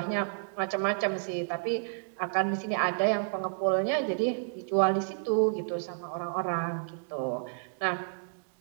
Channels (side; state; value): left; silent; digital silence